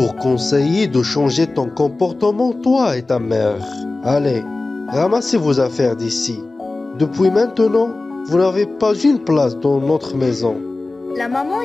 conseillé de changer ton comportement, toi et ta mère. Allez, ramassez vos affaires d'ici. Depuis maintenant, vous n'avez pas une place dans notre maison. La maman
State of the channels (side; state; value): right; quieter; 3.2 dB